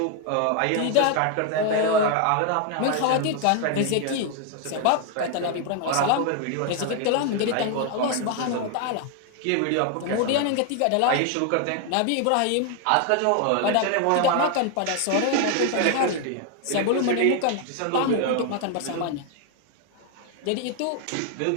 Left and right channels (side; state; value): both; different; correlation 0.00